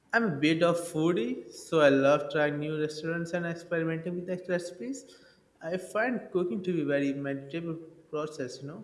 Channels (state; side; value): identical; both; correlation 1.00